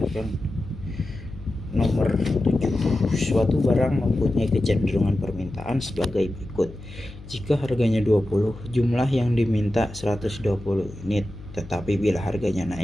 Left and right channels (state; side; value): noise; left; hum, 16 dB below the sound